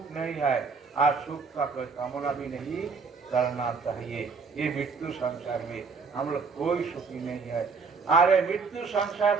नहीं है और सुख का कोई कामना भी नहीं करना चाहिए। ये मृत्यु संसार में हम लोग कोई सुखी नहीं है। अरे मृत्यु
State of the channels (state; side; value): quieter; left; 4.9 dB